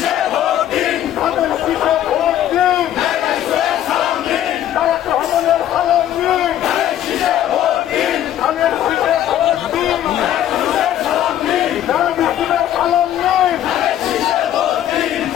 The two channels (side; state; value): right; quieter; 11.7 dB